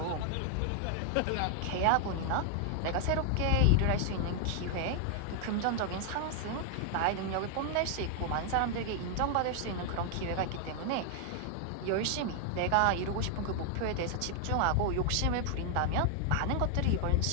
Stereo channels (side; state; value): both; different; correlation 0.00